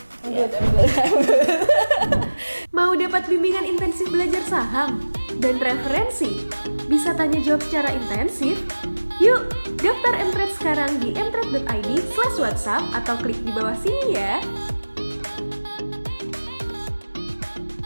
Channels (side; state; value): both; inverted; correlation -1.00